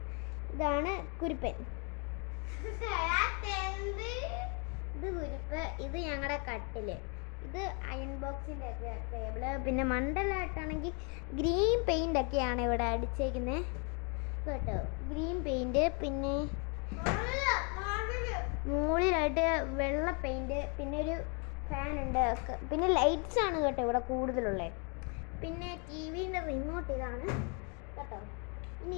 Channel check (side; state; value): right; quieter; 35.5 dB